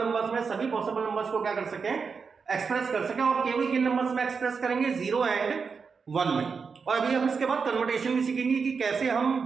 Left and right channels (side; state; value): left; quieter; 5.4 dB